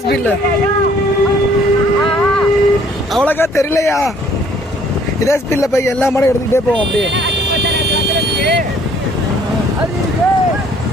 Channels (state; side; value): normal; both; correlation 0.60